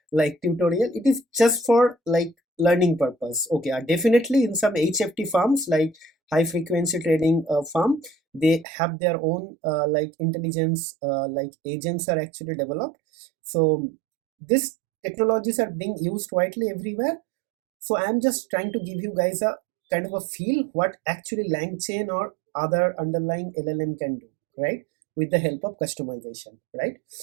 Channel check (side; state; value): left; drops out; at 8.7 s